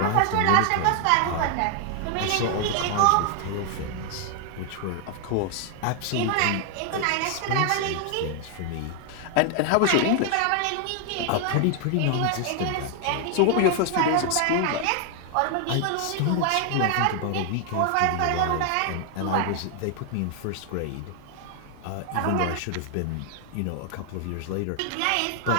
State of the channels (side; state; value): both; different; correlation 0.00